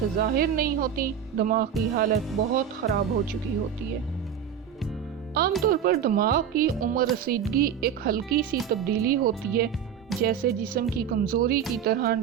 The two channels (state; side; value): quieter; left; 8.4 dB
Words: ظاہر نہیں ہوتی دماغ کی حالت بہت خراب ہو چکی ہوتی ہے۔ عام طور پر دماغ کی عمر رسیدگی ایک ہلکی سی تبدیلی ہوتی ہے، جیسے جسم کی کمزوری کی طرح